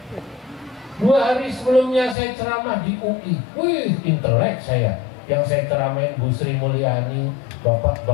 2 hari sebelumnya saya ceramah di UI. Wih, intelek saya. Yang saya ceramain Bu Sri Mulyani, Bapak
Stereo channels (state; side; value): drops out; right; at 2.1 s